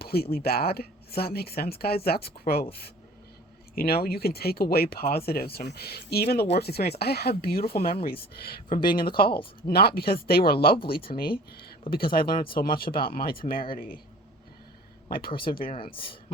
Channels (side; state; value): both; normal; correlation 0.46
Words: bad. Does that make sense, guys? That's growth. You can take away positives from even the worst experience. I have beautiful memories from being in the calls, not because they were lovely to me, but because I learned so much about my temerity, my perseverance,